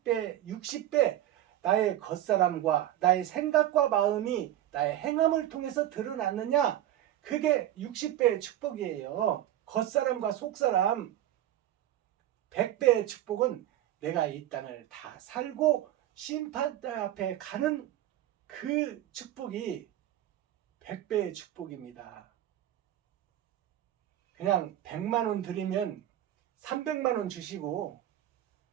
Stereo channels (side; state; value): left; quieter; 12.7 dB